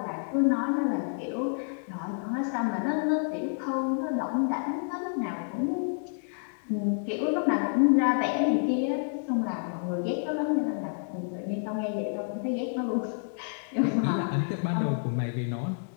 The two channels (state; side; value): silent; right; 59 dB below the other